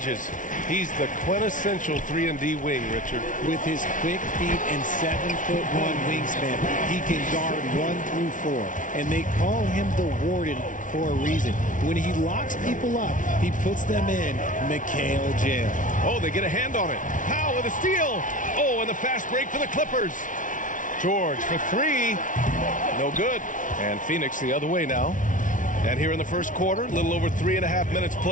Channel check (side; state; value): right; late; 0.38 ms